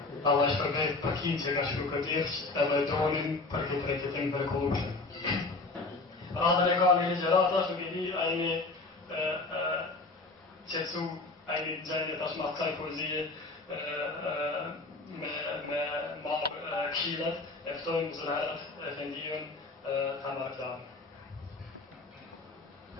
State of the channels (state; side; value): quieter; right; 3.4 dB